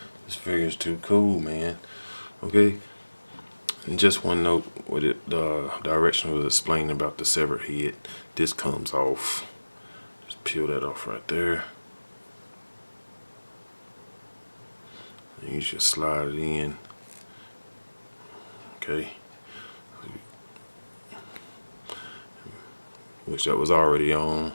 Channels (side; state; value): both; inverted; correlation -1.00